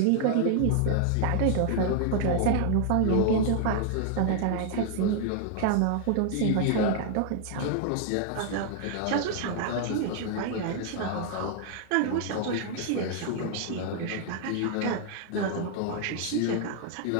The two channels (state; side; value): different; both; correlation 0.00